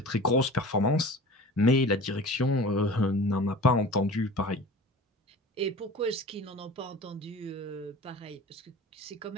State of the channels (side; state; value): both; normal; correlation 0.39